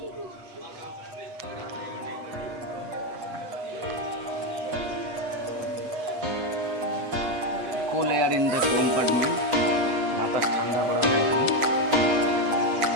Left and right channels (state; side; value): late; left; 8.1 ms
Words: কুল air in the compartment, বাতাস ঠান্ডা করা হয় এখানে।